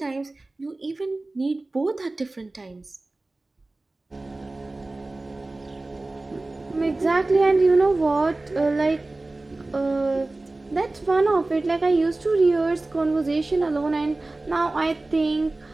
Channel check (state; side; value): quieter; left; 3.0 dB